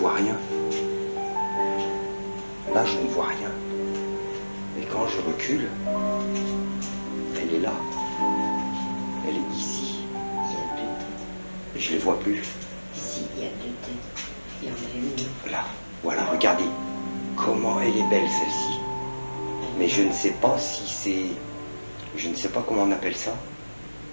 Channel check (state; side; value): inverted; both; correlation -1.00